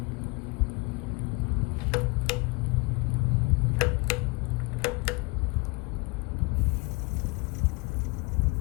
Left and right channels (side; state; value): right; quieter; 28.0 dB